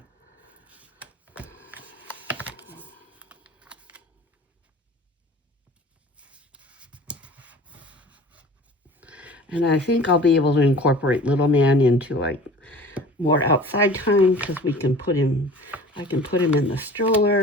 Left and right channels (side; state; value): both; normal; correlation 0.43